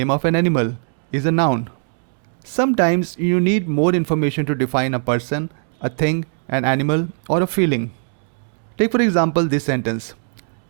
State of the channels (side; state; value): left; silent; digital silence